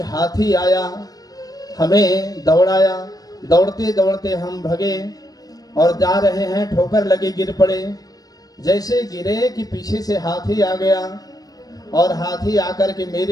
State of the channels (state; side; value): late; right; 0.18 ms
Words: हाथी आया, हमें दौड़ाया, दौड़ते दौड़ते हम भगे और जा रहे हैं, ठोकर लगी, गिर पड़े। जैसे गिरे कि पीछे से हाथी आ गया और हाथी आकर के